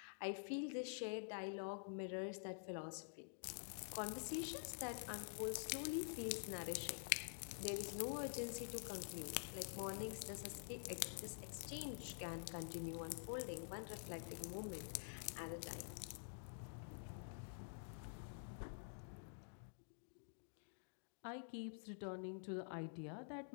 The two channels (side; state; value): right; silent; digital silence